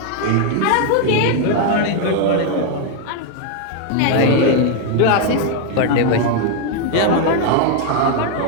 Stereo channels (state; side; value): different; both; correlation 0.01